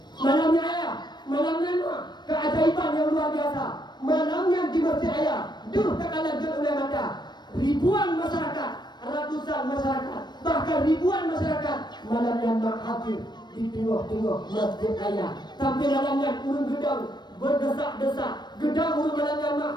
Malamnya ayah. Malamnya mak keajaiban yang luar biasa. Malamnya di masjid ayah. Duh tak kalah oleh mata. Ribuan masyarakat, ratusan masyarakat, bahkan ribuan masyarakat malamnya mak hadir di tengah-tengah masjid ayah. Sampai malamnya urun gedang berdesak-desak. Gedang urun malamnya mak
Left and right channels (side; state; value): right; late; 0.21 ms